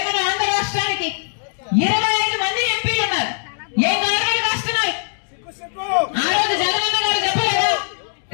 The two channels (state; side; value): silent; right; digital silence